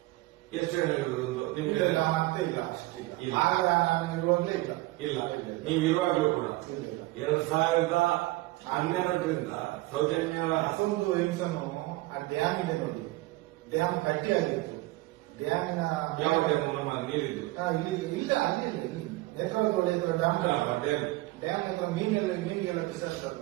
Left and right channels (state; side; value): quieter; left; 19.8 dB